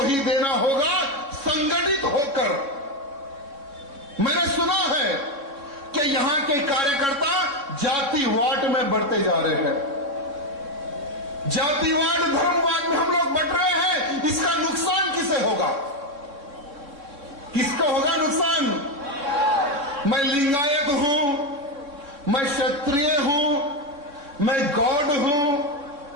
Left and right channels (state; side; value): late; left; 3.6 ms